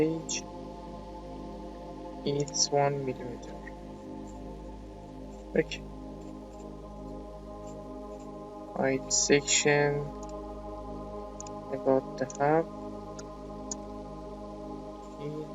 it's 1 millimeter. Okay. Height section about the half,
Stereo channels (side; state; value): both; identical; correlation 1.00